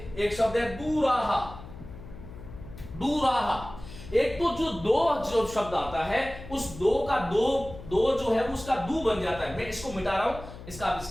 एक शब्द है दूराहा, दूराहा। एक तो जो 2 जो शब्द आता है उस 2 का दो जो है उसका दू बन जाता है। मैं इसको मिटा रहा हूं, इसका आप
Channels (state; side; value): noise; left; hum, 14 dB below the sound